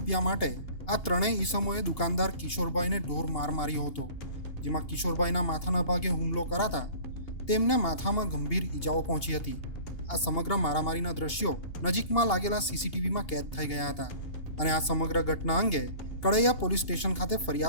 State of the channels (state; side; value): late; right; 2.8 ms